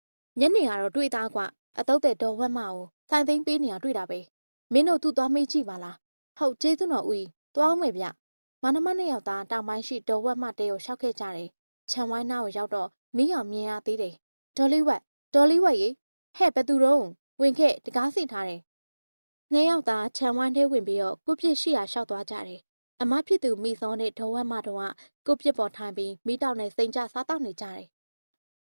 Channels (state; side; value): inverted; both; correlation -1.00